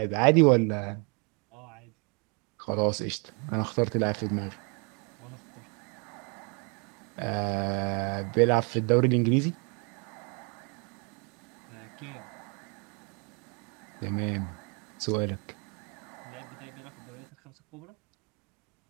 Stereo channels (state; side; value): quieter; left; 33.4 dB